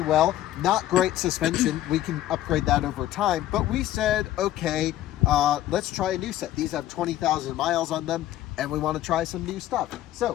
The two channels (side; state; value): right; quieter; 13.5 dB